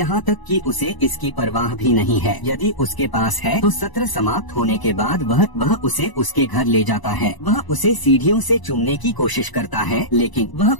तक कि उसे इसकी परवाह भी नहीं है। यदि उसके पास है तो सत्र समाप्त होने के बाद वह उसे उसके घर ले जाता है। वह उसे सीढ़ियों से चूमने की कोशिश करता है, लेकिन वह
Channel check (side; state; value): right; late; 1.0 ms